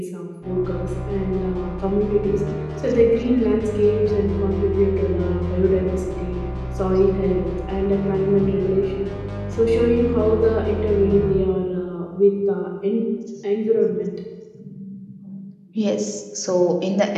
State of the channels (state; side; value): identical; both; correlation 1.00